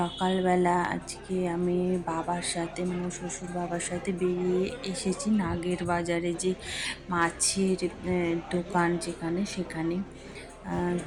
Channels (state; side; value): identical; both; correlation 1.00